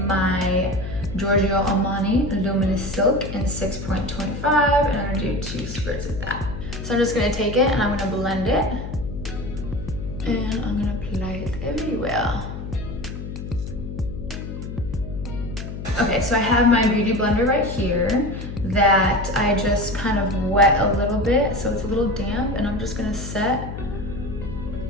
Giorgio Armani Luminous Silk in 6.25, and I'm gonna do 2 squirts of that. So I'm just gonna take it and I'm gonna blend it, and I'm gonna apply it everywhere. Okay, so I have my beauty blender right here that I just kind of wet a little bit, so it's a little damp, and I'm just gonna set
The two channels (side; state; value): left; noise; hum, 8 dB below the sound